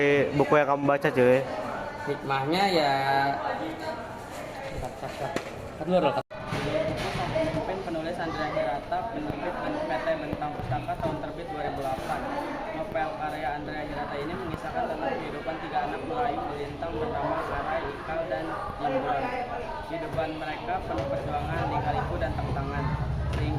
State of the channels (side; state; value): both; identical; correlation 1.00